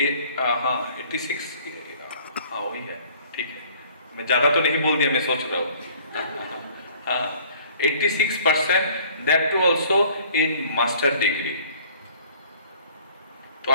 हाँ वही है, ठीक है. मैं ज़्यादा तो नहीं बोल दिया, मैं सोच रहा हूँ. 86%, that too also in master degree. तो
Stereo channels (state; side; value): inverted; both; correlation -0.54